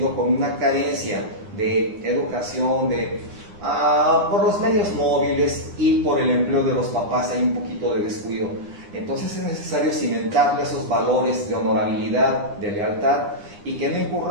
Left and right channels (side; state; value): left; late; 9.9 ms